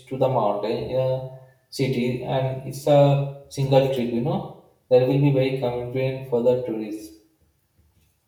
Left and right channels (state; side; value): identical; both; correlation 1.00